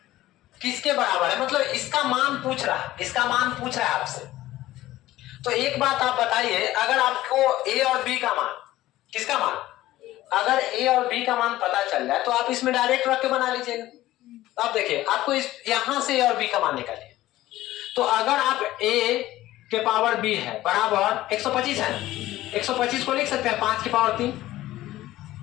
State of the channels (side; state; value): right; quieter; 15.7 dB